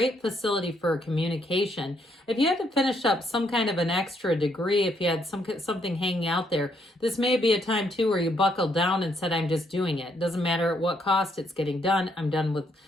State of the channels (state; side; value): normal; both; correlation 0.73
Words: facility for communication. If you had to finish up some kind of an extra degree, if you had something hanging out there, this may be a time, too, where you buckled down and said, I'm just doing it. Doesn't matter at what cost, it's getting done. I'm done with